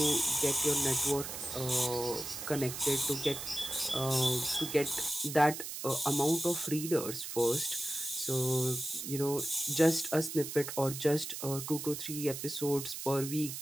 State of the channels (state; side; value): noise; right; hiss, 7 dB below the sound